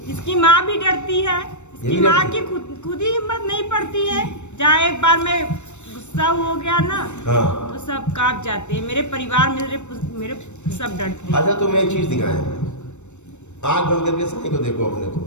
इसकी माँ भी डरती है। इसकी माँ की खुद ही हिम्मत नहीं पड़ती है। जहाँ एक बार मैं गुस्सा हो गया ना, हाँ, तो सब कांप जाते हैं। मेरे परिवार मेरे सब डरते हैं। अच्छा, तुम्हें एक चीज दिखाएं, आंख बंद करके साईं को देखो, अपने को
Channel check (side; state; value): right; late; 0.83 ms